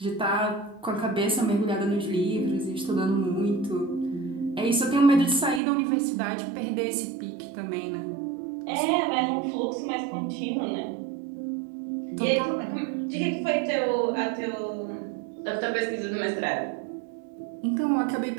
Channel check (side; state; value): left; drops out; at 5.6 s